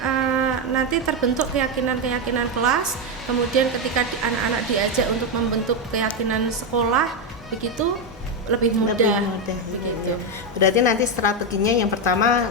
nanti terbentuk keyakinan kelas, kemudian ketika anak-anak diajak untuk membentuk keyakinan sekolah begitu lebih mudah begitu. Berarti nanti strateginya yang pertama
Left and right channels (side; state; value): both; normal; correlation 0.07